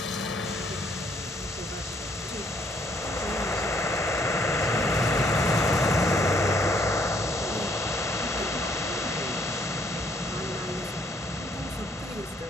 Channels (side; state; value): both; normal; correlation 0.67